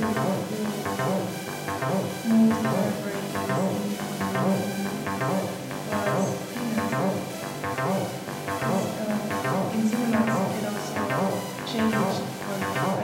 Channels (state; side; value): identical; both; correlation 1.00